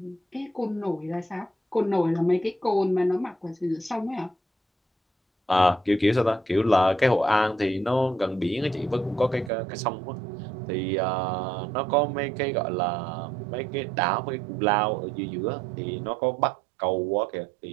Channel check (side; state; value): left; drops out; at 9.5 s